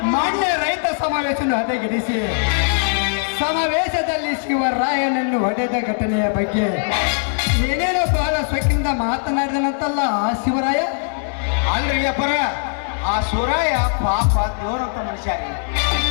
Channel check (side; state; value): right; silent; digital silence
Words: ಮಾನ್ಯ ರೈತ ಸಮಾವೇಶವನ್ನು ಹದಗೆಡಿಸಿ ಸಮಾವೇಶದಲ್ಲಿ ಶಿವರಾಯನನ್ನು ಹೊಡೆದ ಘಟನೆಯ ಬಗ್ಗೆ ಏನೇನೋ ಬಹಳ ಸೊಕ್ಕಿನಿಂದ ಮಾತನಾಡಿದನಂತಲ್ಲ ಆ ಶಿವರಾಯ. ಅಲ್ರಿ ಅಪ್ಪರ, ಆ ಶಿವರಾಯ ಪಾಪ ದೇವ್ರಂತ ಮನುಷ್ಯ ರೀ.